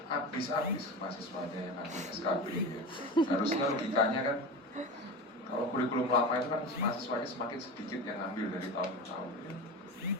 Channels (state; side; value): normal; both; correlation 0.27